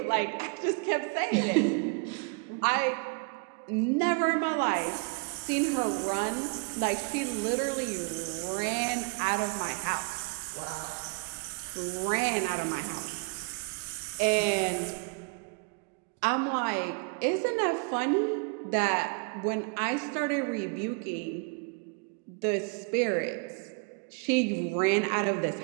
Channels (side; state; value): left; quieter; 32.7 dB